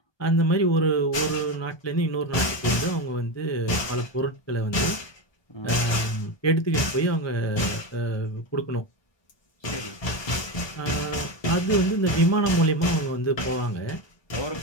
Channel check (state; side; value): late; right; 1.2 ms